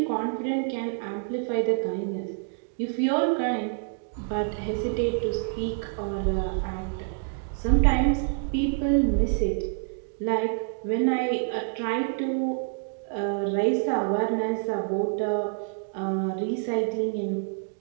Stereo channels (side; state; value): left; silent; digital silence